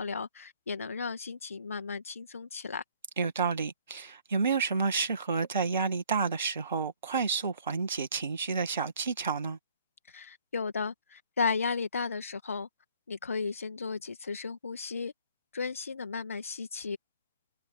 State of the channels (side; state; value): both; inverted; correlation -0.60